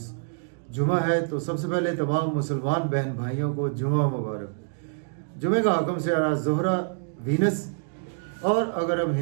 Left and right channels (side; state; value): left; silent; digital silence